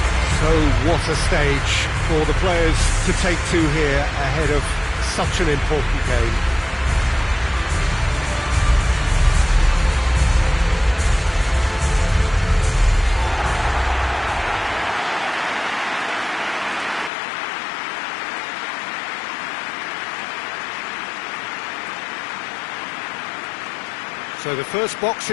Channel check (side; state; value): right; drops out; at 17.1 s